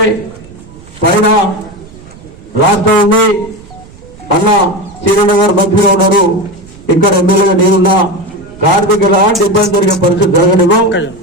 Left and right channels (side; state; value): right; noise; rumble, 22 dB below the sound